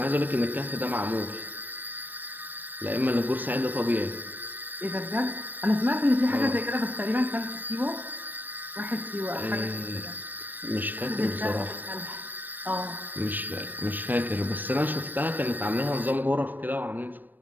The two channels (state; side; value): late; left; 0.090 ms